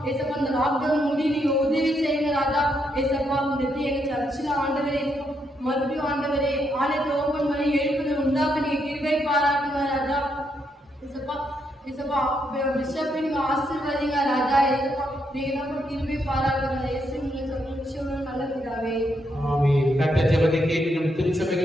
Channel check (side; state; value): both; normal; correlation 0.78